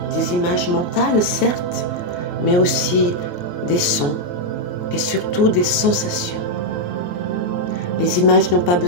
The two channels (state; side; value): late; right; 28 ms